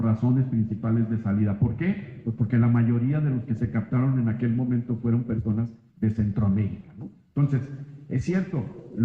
principales de salida. ¿Por qué? Pues porque la mayoría de los que se captaron en aquel momento fueron personas de Centroamérica, ¿no? Entonces, es cierto,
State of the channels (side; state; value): both; identical; correlation 1.00